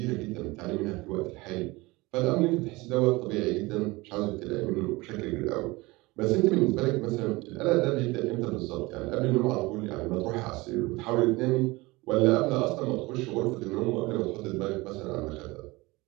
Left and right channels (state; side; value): quieter; left; 22.3 dB